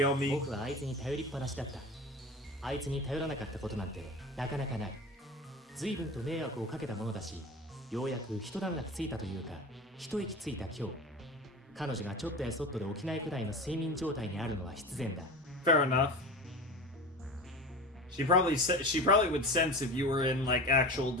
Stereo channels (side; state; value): both; normal; correlation 0.31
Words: 僕はあいつに頼りっぱなしだったあいつに頼らなかったことなんてなかなかない随分と迷惑をかけたものだしようやく一段落ついたというか一息ついた今日彼女がちょっとやそっとで起きないくらいの睡眠状態にあるのは必然だ fair enough. She probably would sense if you were in like actual